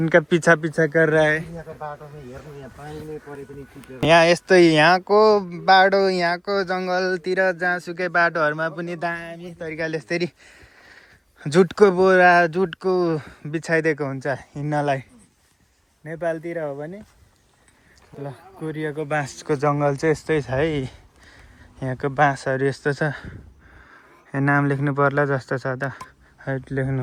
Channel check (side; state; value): both; identical; correlation 1.00